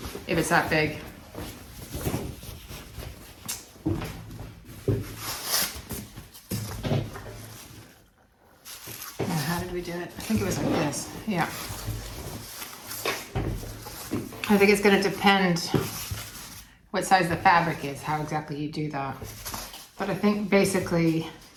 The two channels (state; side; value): identical; both; correlation 1.00